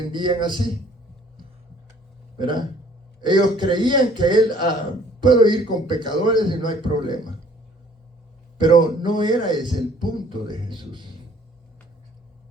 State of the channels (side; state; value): both; normal; correlation 0.57